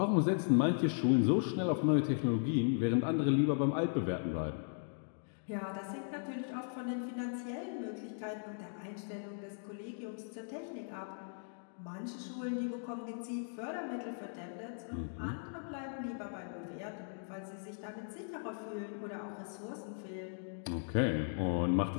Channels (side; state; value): right; silent; digital silence